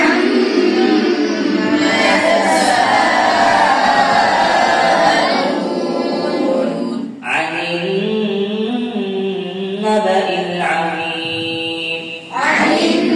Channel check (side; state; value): both; identical; correlation 1.00